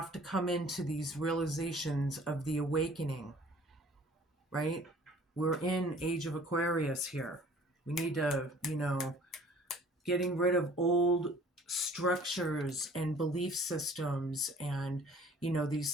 to come into these realizations of the awakening, right? We're in Age of Aquarius here. We need to, getting rid of old structures and belief systems, and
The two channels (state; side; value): normal; both; correlation 0.52